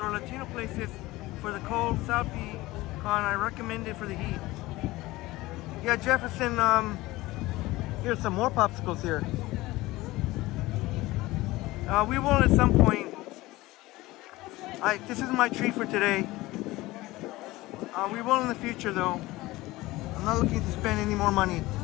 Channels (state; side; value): quieter; right; 19.1 dB